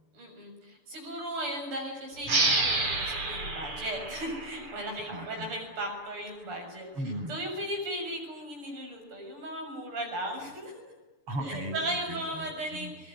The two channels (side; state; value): left; late; 6.9 ms